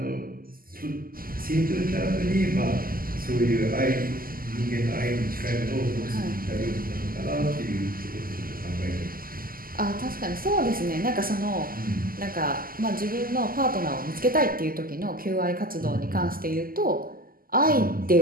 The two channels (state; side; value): late; left; 0.42 ms